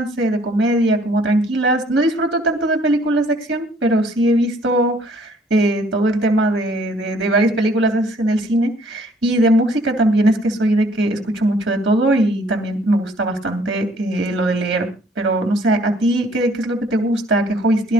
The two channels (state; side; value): normal; both; correlation 0.60